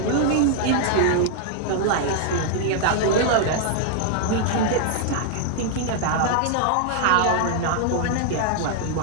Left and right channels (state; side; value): different; both; correlation -0.01